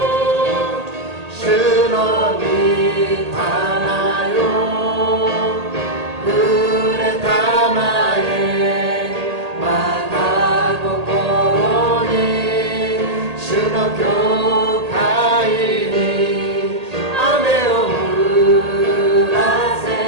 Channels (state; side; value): late; left; 1.8 ms